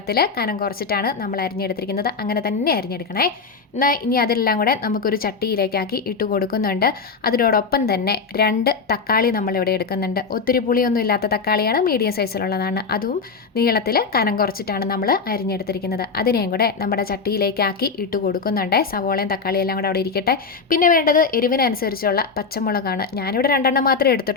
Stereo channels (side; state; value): right; quieter; 5.0 dB